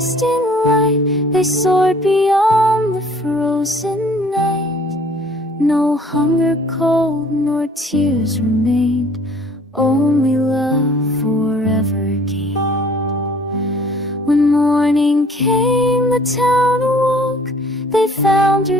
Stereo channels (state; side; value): normal; both; correlation 0.55